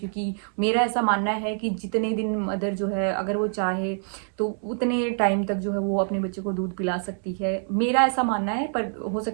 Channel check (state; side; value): silent; left; digital silence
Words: मेरा ऐसा मानना है कि जितने दिन मदर जो है अगर वो चाहे तो उतने टाइम तक जो है वो अपने बच्चे को दूध पिला सकती है। मेरा ऐसा मानना है, पर हो